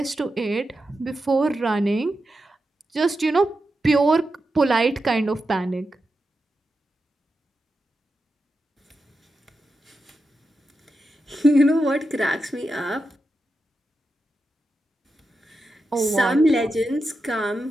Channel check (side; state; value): both; normal; correlation 0.89